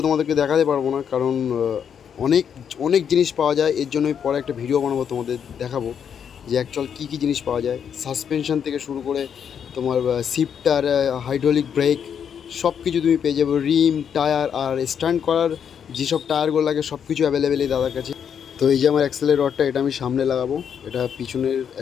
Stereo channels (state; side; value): quieter; right; 7.9 dB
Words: তোমাদেরকে দেখাতে পারবো না, কারণ অনেক অনেক জিনিস পাওয়া যায়। এর জন্য আমি পরে একটা ভিডিও বানাবো, তোমাদের দেখাবো যে অ্যাকচুয়াল কী কী জিনিস পাওয়া যায়। সাসপেনশন থেকে শুরু করে তোমার শিফটার, হাইড্রোলিক ব্রেক, সব কিছু তুমি পেয়ে যাবে। রিম, টায়ার আর স্ট্যান্ড করার যেসব টায়ারগুলো লাগে সব কিছু অ্যাভেলেবেল এই দাদার কাছে। তো এই যে আমার অ্যাক্সেলের রডটা, এটা আমি সামনে লাগাবো। এটা পিছনের